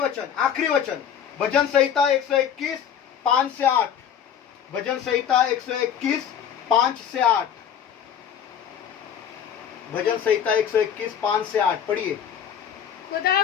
वचन भजन संहिता 121 5 से 8। भजन संहिता 121 5 से 8। भजन संहिता 121 5 से 8 पढ़िए।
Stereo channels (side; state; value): right; quieter; 8.7 dB